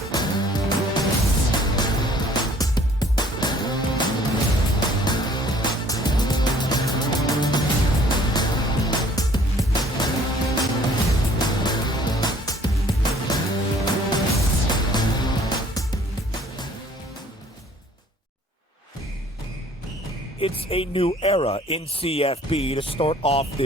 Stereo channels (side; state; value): both; normal; correlation 0.56